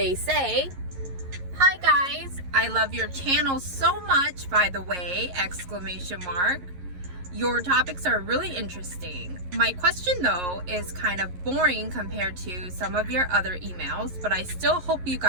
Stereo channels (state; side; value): late; left; 11 ms